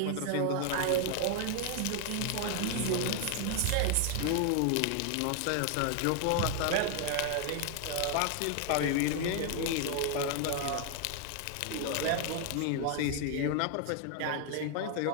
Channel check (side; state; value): both; different; correlation 0.00